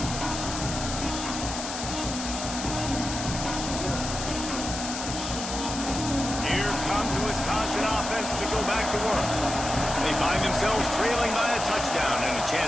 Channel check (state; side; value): noise; left; hiss, 6 dB below the sound